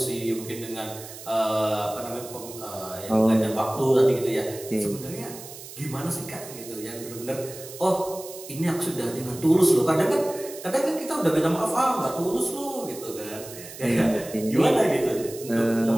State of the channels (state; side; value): noise; right; hiss, 14 dB below the sound